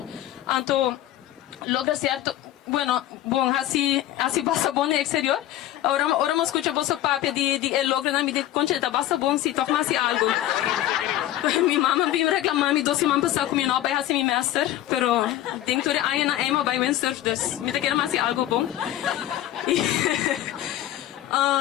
então logra certo. Bueno, bom, assim passa bom no exterior. Ora me escuta você papo de logra na minha concheta, basta bom se toca mais algo. Minha mãe veio reclamar me 12 semanas passar com minha nova assim minha master, pero tem que ter aí na Emma by windsurf, dus me quer mais algo bom.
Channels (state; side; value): quieter; right; 13.4 dB